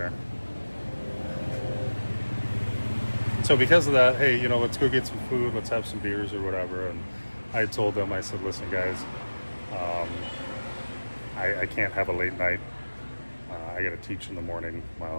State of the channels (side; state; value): both; inverted; correlation -1.00